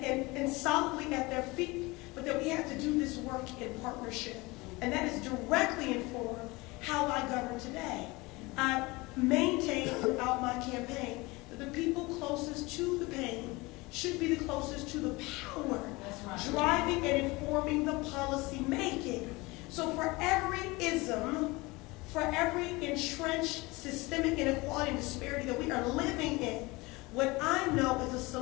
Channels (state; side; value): quieter; right; 23.3 dB